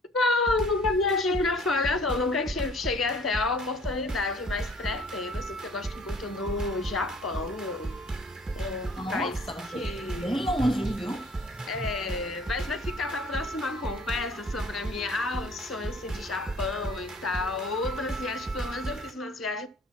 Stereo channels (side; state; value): both; normal; correlation 0.53